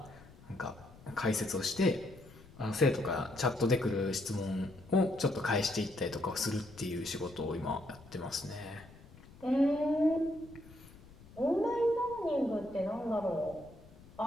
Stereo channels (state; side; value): noise; left; rumble, 21 dB below the sound